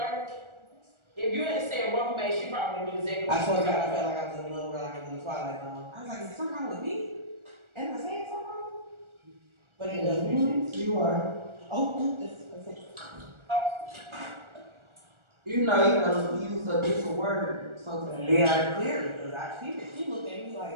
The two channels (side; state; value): left; late; 1.4 ms